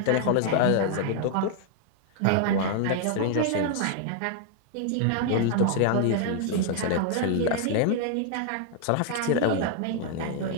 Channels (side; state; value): both; different; correlation 0.00